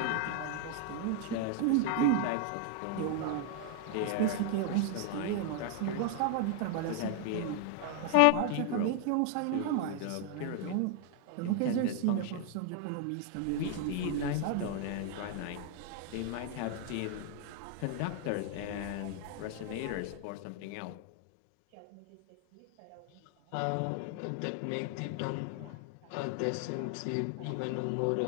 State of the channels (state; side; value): different; both; correlation 0.00